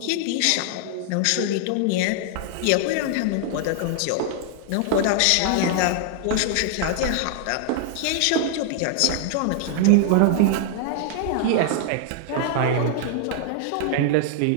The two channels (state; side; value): different; both; correlation 0.00